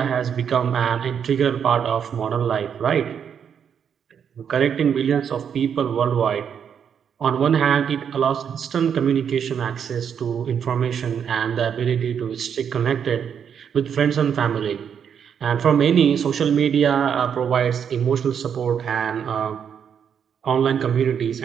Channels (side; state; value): left; quieter; 7.8 dB